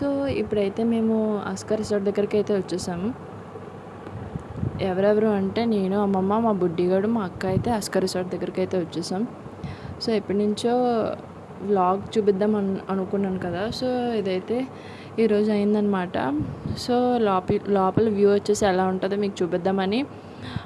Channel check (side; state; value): both; identical; correlation 1.00